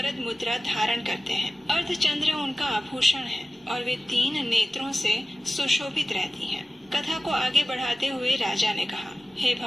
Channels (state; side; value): normal; both; correlation 0.96